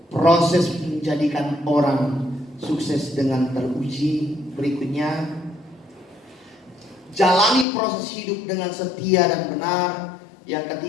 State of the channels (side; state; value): right; drops out; at 7.7 s